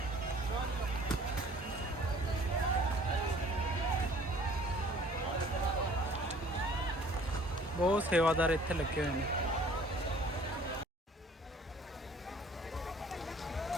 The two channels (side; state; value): both; normal; correlation 0.53